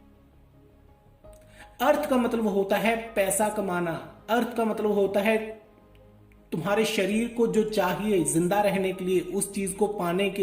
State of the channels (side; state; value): both; identical; correlation 1.00